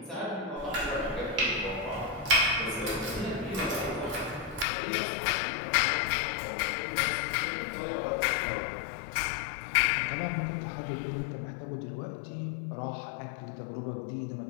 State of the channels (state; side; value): drops out; right; at 4.7 s